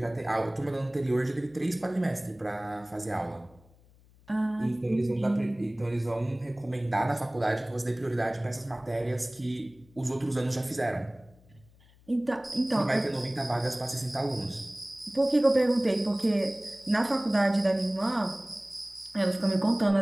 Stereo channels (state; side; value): noise; left; hum, 28 dB below the sound